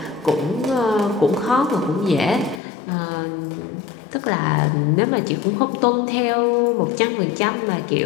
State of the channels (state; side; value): drops out; right; at 2.6 s